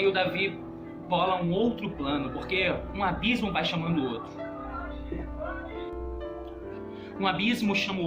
o Davi bola um outro plano, porque um abismo vai chamando o outro. Um abismo chama o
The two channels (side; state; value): both; identical; correlation 1.00